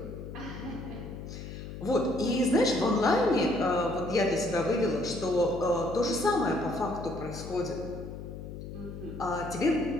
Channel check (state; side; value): noise; left; hum, 10 dB below the sound